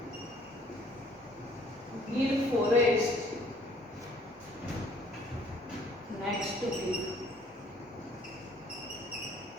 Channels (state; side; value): normal; both; correlation 0.59